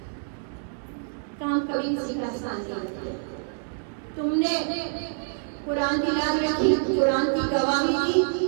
کام کبھی کسی کا احسان نہیں کیا، تم نے قرآن کی یاد رکھی، قرآن کی گواہی دی،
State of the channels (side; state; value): left; silent; 61 dB below the other